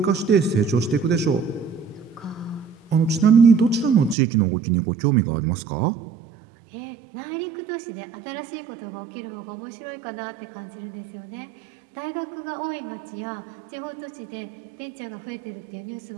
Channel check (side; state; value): left; drops out; at 4.2 s